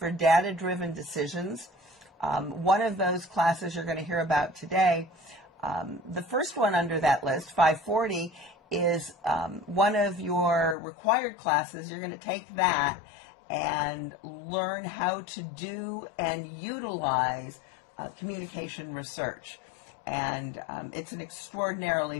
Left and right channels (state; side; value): drops out; right; at 10.8 s